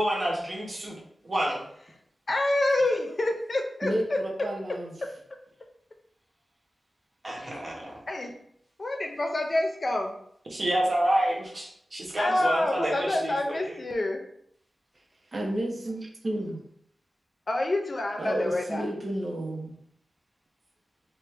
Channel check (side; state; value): both; normal; correlation 0.94